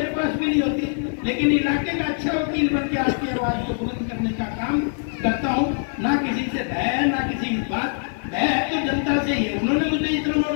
पास भी नहीं होती, लेकिन इलाके का अच्छा वकील बन के आपकी आवाज को बुलंद करने का काम करता हूँ। ना किसी से भय, ना किसी की बात, भय तो जनता से ही है। उन्होंने मुझे इतना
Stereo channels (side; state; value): right; silent; 57 dB below the other